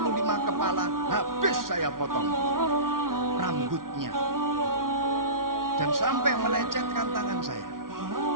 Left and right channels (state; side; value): late; left; 0.91 ms